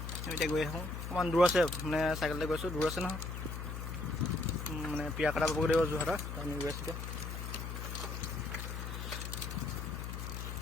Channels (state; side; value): noise; left; hum, 6 dB below the sound